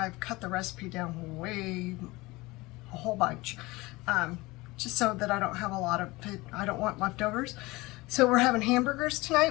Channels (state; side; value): quieter; right; 21.8 dB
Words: cut the recipe down a whole bunch, just so that I don't have I don't want leftovers. So we're having hamburgers